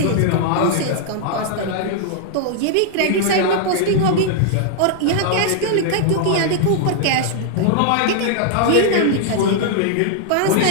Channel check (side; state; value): both; different; correlation -0.01